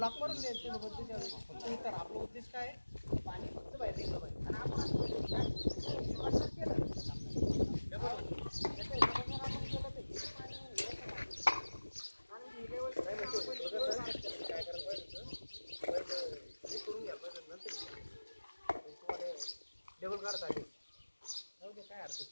मारून द्यायचं. फक्त इतर आपलं उद्देश काय आहे, पाणी फक्त बाहेर निघलं पाहिजे. आणि आपण काय करायला पाहिजे हे करून घ्यायला पाहिजे, नंतर तुम्हाला डबल काढता आले जाऊ दे, काय हरकत.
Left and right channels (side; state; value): both; inverted; correlation -1.00